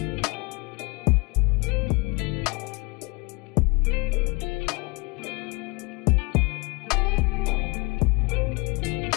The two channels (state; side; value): quieter; right; 27.7 dB